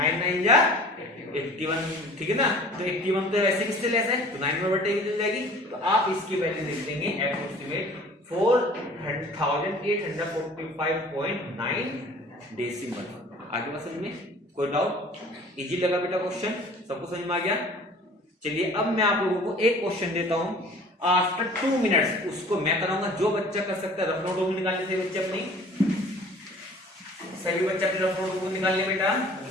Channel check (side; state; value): both; normal; correlation 0.47